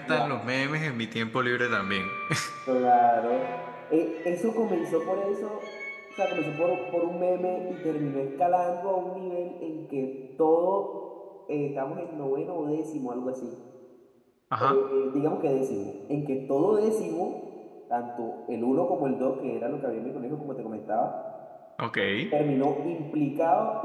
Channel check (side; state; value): both; identical; correlation 1.00